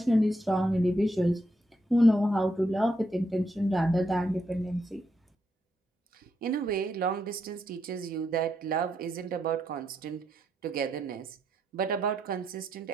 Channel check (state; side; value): normal; both; correlation 0.80